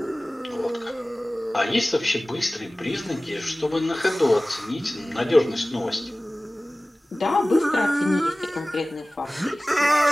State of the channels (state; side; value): normal; both; correlation 0.98